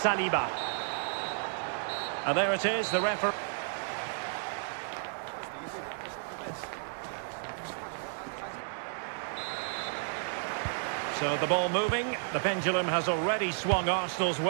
And there it is, the referee. So the ball moving. The pendulum has already swung Arsenal's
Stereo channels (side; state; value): left; silent; digital silence